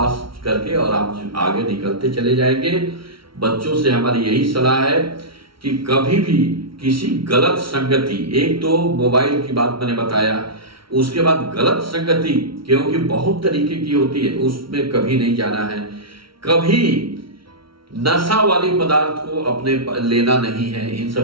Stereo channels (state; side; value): late; left; 0.74 ms